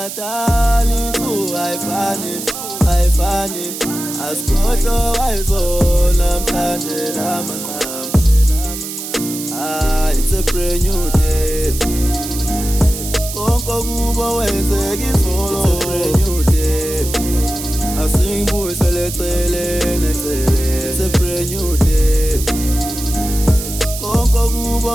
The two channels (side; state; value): right; noise; hiss, 8 dB below the sound